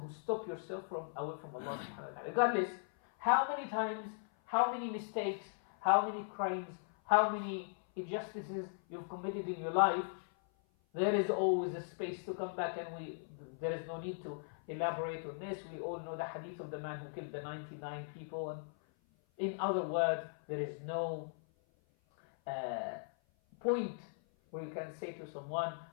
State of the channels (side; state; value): right; silent; 52 dB below the other